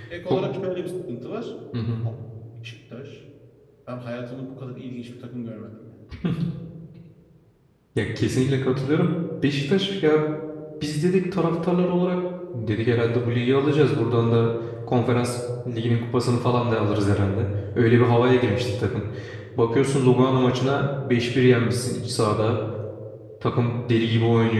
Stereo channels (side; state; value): both; identical; correlation 1.00